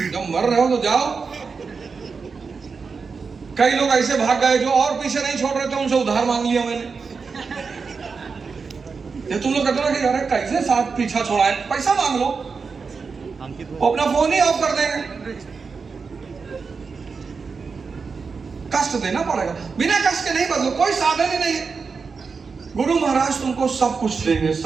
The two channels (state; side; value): quieter; left; 5.0 dB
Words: जब मर रहे हो तो जाओ। कई लोग ऐसे भाग गए जो और पीछे नहीं छोड़ रहे थे, उनसे उधार मांग लिया मैंने। ये तुम लोग कहते हो कि यार कैसे साथ पीछा छोड़ा है, पैसा मांग लो, वो अपना फोन ही ऑफ कर देंगे। कष्ट देना पड़ेगा, बिना कष्ट के नहीं बदलो, कोई साधन ही नहीं है। गुरु महाराज तुमको सब कुछ देंगे,